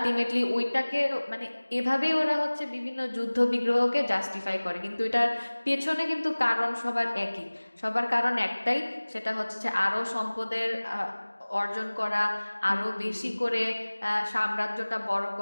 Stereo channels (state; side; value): inverted; both; correlation -1.00